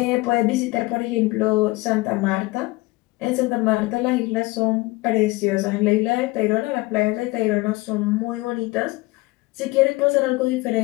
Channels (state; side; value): quieter; right; 21.5 dB